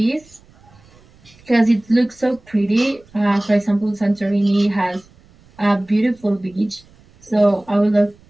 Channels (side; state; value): right; noise; rumble, 28 dB below the sound